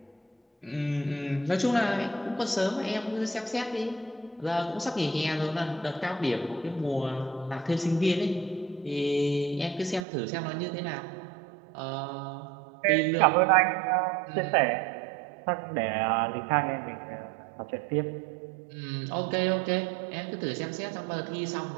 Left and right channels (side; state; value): left; drops out; at 10.0 s